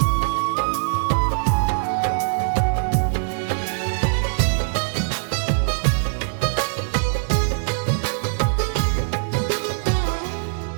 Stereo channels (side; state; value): left; silent; digital silence